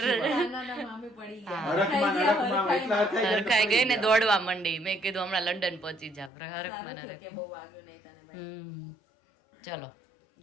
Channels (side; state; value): right; drops out; at 6.3 s